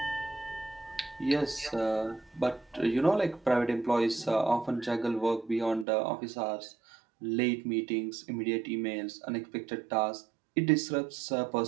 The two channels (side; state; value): left; drops out; at 5.9 s